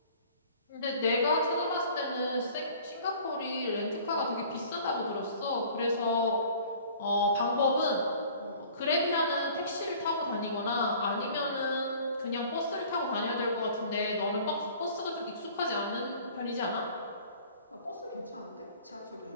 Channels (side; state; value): both; inverted; correlation -0.49